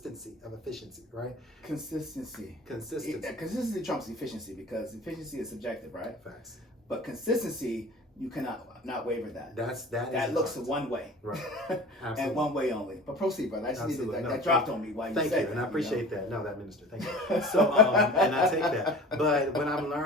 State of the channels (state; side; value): normal; both; correlation 0.41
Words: of efficiency, right? Consistency trumps efficiency because efficiency is subjective, right? Facts. But consistency, you cannot not waver that. That looks one way. Right. And one way only. But proceed, brother. I just needed that. No, that dropped on me while you said it. Thank you, and I appreciate that. No, that minister, thank you. So, and I take that. But when I'm